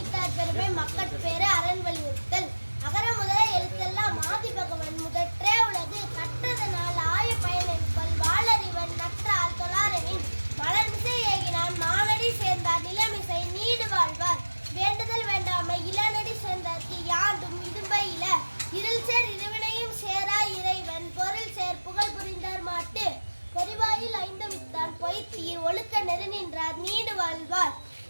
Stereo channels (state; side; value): inverted; both; correlation -1.00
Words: பெருமை, மக்கட்பேறு, அரண் வலியுறுத்தல். அகர முதல எழுத்தெல்லாம் ஆதி பகவன் முதற்றே உலகு கற்றதனால் ஆய பயன் என்பல் வாளறிவன் நற்றால் தொழாரெனின் மலர்மிசை ஏகினான் மானடி சேர்ந்தார் நிலமிசை நீடு வாழ்வார் வேண்டுதல் வேண்டாமை இளநடி சேர்ந்தார்க்கு யாண்டும் இடும்பை இல இருள் சேர் இருவினையும் சேரா இறைவன் பொருள் சேர் புகழ் புரிந்தார் மாட்டு பொறிவாயில் ஐந்து வித்தான் பொய்த்தீர் ஒழுக்க நெருநின்றார் நீடு வாழ்வார்